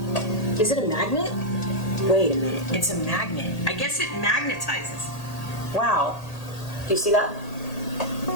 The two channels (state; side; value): late; right; 1.8 ms